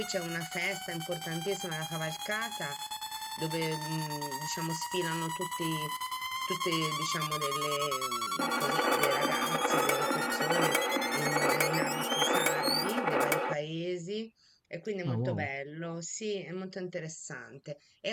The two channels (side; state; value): both; identical; correlation 1.00